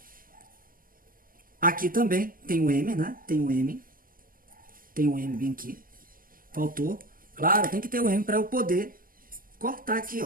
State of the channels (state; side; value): late; left; 0.41 ms